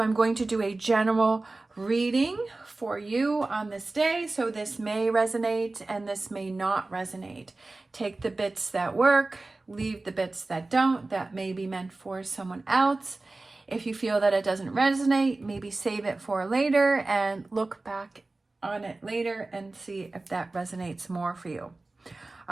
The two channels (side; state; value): left; quieter; 3.2 dB